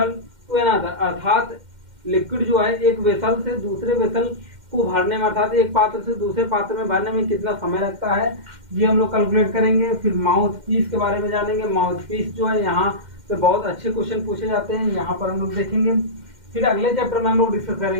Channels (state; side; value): late; left; 2.1 ms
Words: to another अर्थात लिक्विड जो है एक वेसल से दूसरे वेसल को भरने में अर्थात एक पात्र से दूसरे पात्र में भरने में कितना समय लगता है ये हम लोग कैलकुलेट करेंगे। फिर माउथ पीस के बारे में जानेंगे, माउथ पीस जो है यहाँ से बहुत अच्छे क्वेश्चन पूछे जाते हैं, यहाँ पर हम लोग देखेंगे। फिर अगले चैप्टर में हम लोग डिस्कस